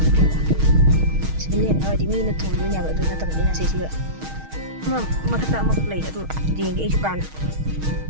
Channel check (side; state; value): left; late; 6.4 ms